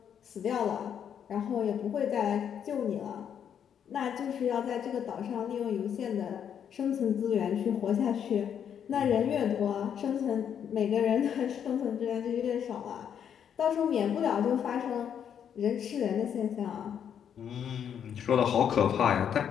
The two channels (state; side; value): quieter; right; 8.5 dB